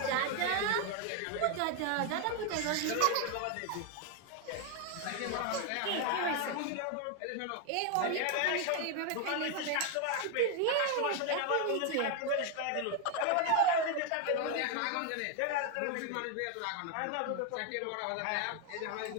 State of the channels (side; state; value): both; different; correlation 0.01